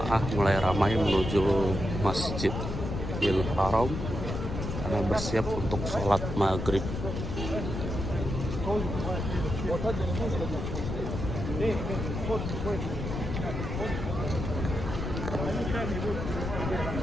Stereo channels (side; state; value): left; noise; rumble, 4 dB below the sound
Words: mulai ramai menuju Masjidil Haram karena bersiap untuk sholat maghrib.